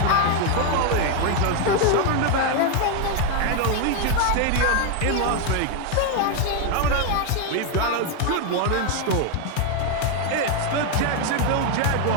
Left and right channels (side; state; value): both; different; correlation 0.01